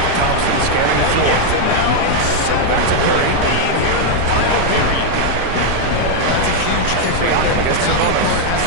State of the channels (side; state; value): both; different; correlation 0.00